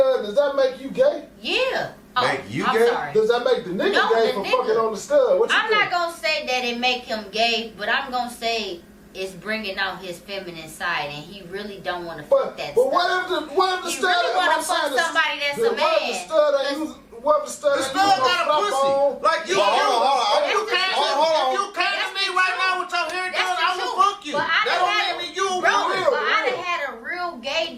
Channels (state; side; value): identical; both; correlation 1.00